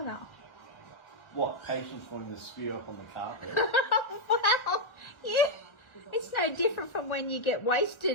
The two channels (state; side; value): late; right; 1.4 ms